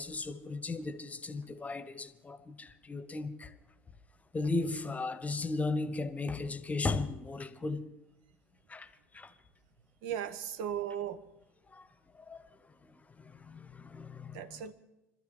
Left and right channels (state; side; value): normal; both; correlation 0.64